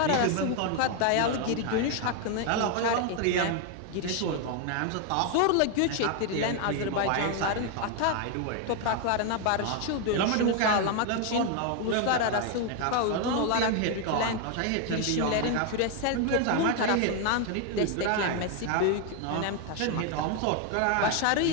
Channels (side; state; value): both; different; correlation 0.01